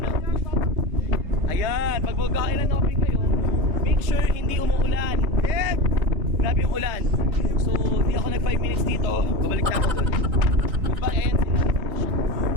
Ayan, pag magka-island hopping kayo, make sure hindi umuulan. Grabe yung ulan. So, di ako nag 5 minutes dito, babalik na ako doon. Goodbye and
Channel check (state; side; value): late; left; 3.9 ms